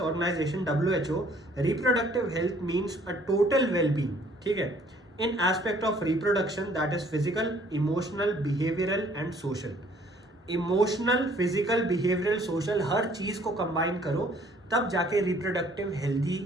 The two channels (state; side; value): normal; both; correlation 0.59